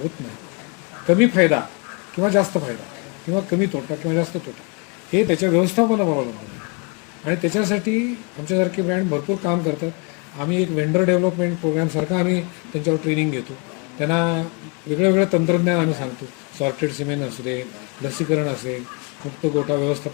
होत नाही. कमी फायदा किंवा जास्त फायदा किंवा कमी तोटा किंवा जास्त तोटा हे त्याच्या व्यवस्थापनावर अवलंबून आहे. आणि त्याच्यासाठी आमच्यासारखे ब्रँड भरपूर काम करतात. आम्ही एक व्हेंडर डेव्हलपमेंट प्रोग्रामसारखा आम्ही त्यांच्यावर ट्रेनिंग घेतो, त्यांना वेगळं तंत्रज्ञान आम्ही सांगतो. सॉर्टेड सिमेंट असू दे, लसीकरण असेल, मुक्त गोठा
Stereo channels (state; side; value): quieter; right; 31.0 dB